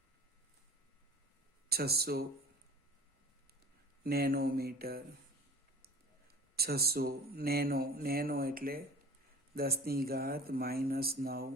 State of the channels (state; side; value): normal; both; correlation 0.42